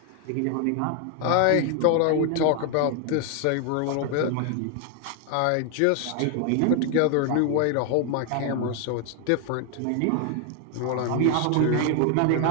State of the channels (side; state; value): both; different; correlation 0.01